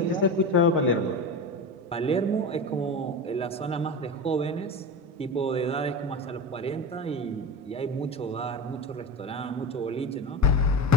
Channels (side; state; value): both; normal; correlation 0.26